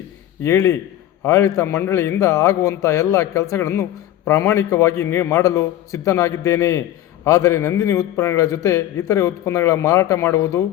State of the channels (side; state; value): right; quieter; 12.9 dB